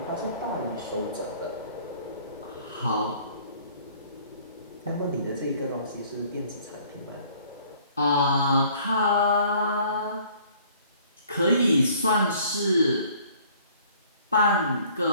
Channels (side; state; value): both; inverted; correlation -0.56